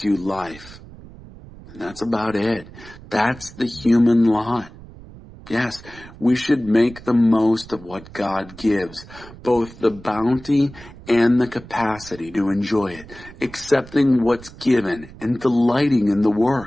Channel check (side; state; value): right; noise; rumble, 18 dB below the sound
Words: you life. And that's about it. That's the human lot. Yes, we should make the most of what God gives, both the bounty and the capacity to enjoy it, accepting what's given and delighting in the